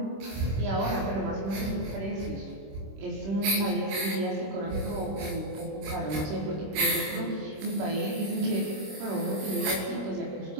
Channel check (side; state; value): left; late; 26 ms